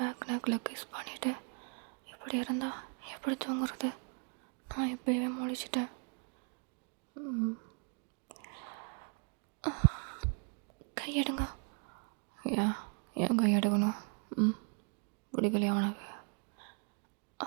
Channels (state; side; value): quieter; left; 39.2 dB